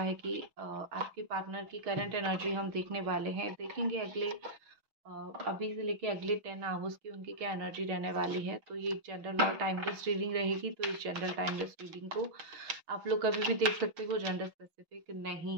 कि आपके पार्टनर की करंट एनर्जी हम देखने वाले हैं। देखेंगे अगले अभी से लेके अगले 10 आवर्स की उनकी क्या एनर्जी रहने वाली है। तो ये जनरल और टाइमलेस रीडिंग रहेगी। तो इस जनरल टाइमलेस रीडिंग को आप लोग कभी भी देख सकते हो, जेंडर स्पेसिफिक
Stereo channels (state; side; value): late; left; 6.3 ms